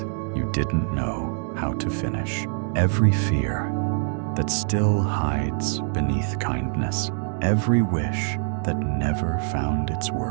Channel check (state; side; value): silent; left; 55 dB below the other